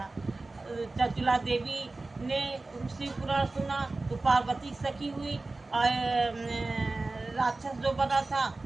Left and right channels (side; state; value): left; quieter; 3.3 dB